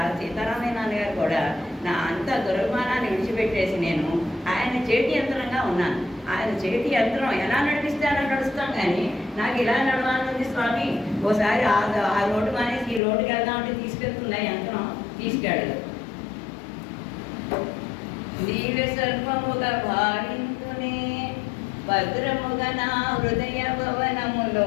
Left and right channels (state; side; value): drops out; right; at 13.0 s